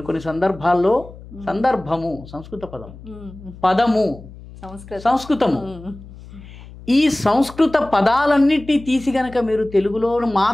కొన్ని సందర్భాల్లో సందర్భము సంస్కృత పదము, పదము సంస్కృతము. ఈ సంస్కృత పదాలన్నిటినీ తీసి గనక మీరు తెలుగులో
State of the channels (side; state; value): left; noise; hum, 17 dB below the sound